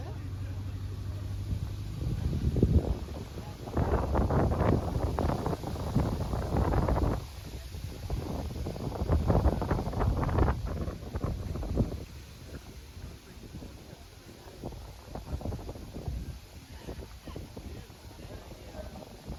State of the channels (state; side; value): identical; both; correlation 1.00